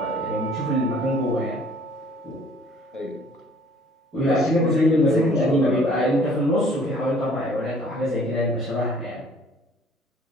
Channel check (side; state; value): both; normal; correlation 0.55